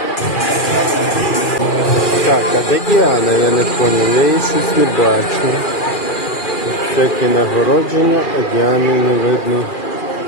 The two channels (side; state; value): right; late; 2.4 ms